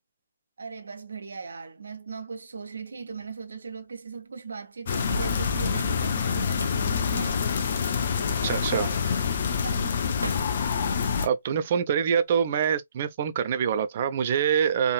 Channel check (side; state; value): both; inverted; correlation -0.62